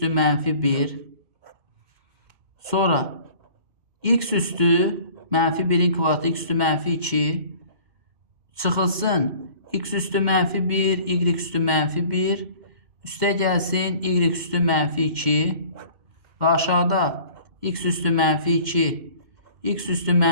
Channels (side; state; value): left; late; 2.2 ms